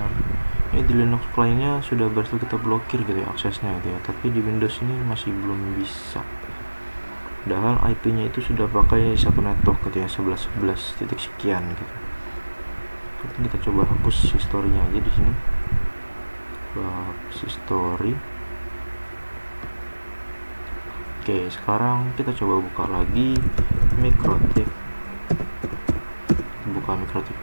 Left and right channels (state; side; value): inverted; both; correlation -1.00